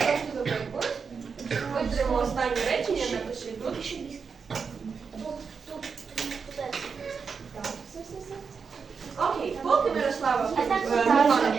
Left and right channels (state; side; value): quieter; left; 5.7 dB